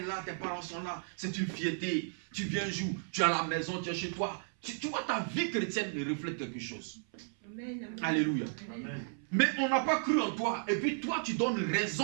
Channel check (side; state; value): left; silent; 55 dB below the other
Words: là, tes parents sont là, c'est une fierté. Tu viens un jour, tu es à la maison, tu es chez toi. Tu vois, ta vie chrétienne reflète quelque chose. Amen. Alléluia. Amen. Mais on n'a pas cru en toi. Et puis toi, tu donnes raison